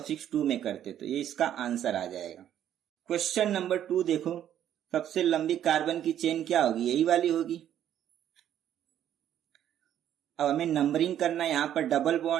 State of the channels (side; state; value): left; quieter; 10.7 dB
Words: 2 में करते, तो ये इसका आंसर आ जाएगा। क्वेश्चन नंबर 2 देखो, सबसे लंबी कार्बन की चेन क्या होगी, यही वाली होगी। अब हमें नंबरिंग करना है, यहाँ पर डबल